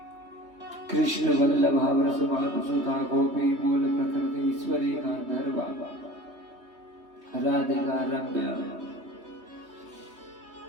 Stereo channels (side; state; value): left; late; 3.2 ms